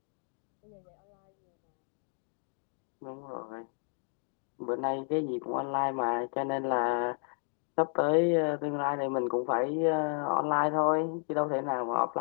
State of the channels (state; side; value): silent; right; 56 dB below the other